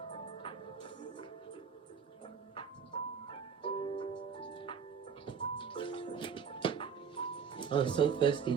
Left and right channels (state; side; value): quieter; left; 6.7 dB